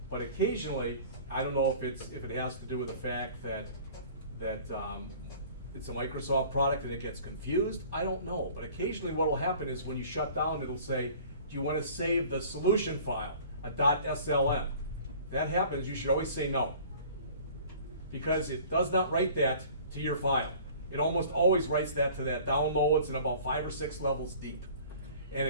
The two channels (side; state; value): both; inverted; correlation -0.47